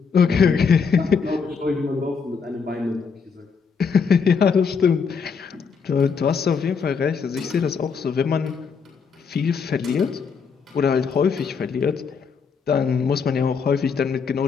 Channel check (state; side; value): quieter; right; 5.8 dB